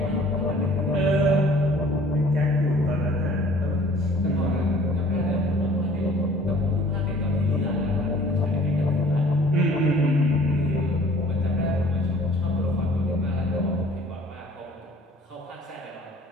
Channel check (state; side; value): normal; both; correlation 0.52